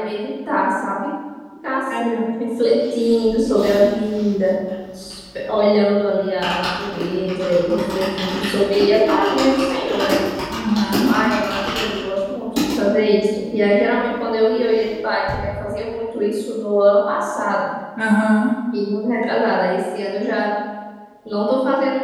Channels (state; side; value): identical; both; correlation 1.00